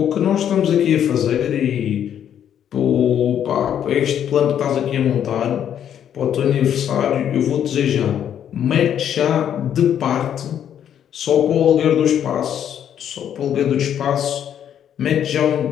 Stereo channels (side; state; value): right; quieter; 9.6 dB